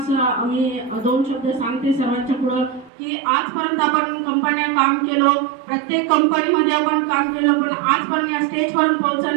मी 2 शब्द सांगते सर्वांच्या पुढं की आजपर्यंत आपण कंपन्या काम केलं, प्रत्येक कंपनीमध्ये आपण काम केलं, पण आजपर्यंत या स्टेजपर्यंत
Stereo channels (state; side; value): drops out; left; at 2.9 s